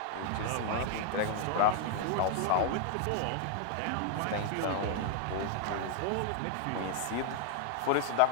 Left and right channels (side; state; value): both; different; correlation 0.00